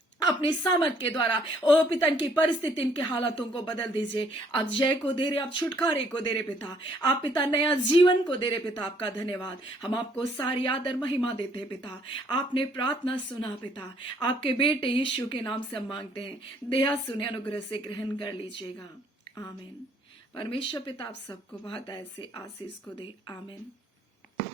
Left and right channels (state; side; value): normal; both; correlation 0.64